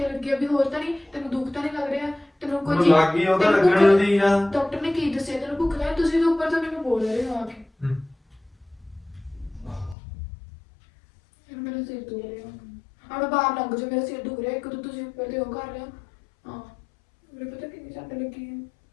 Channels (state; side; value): drops out; right; at 10.0 s